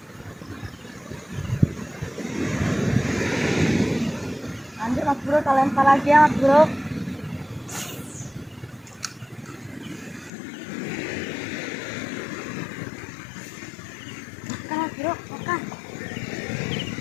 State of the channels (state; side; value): drops out; right; at 10.3 s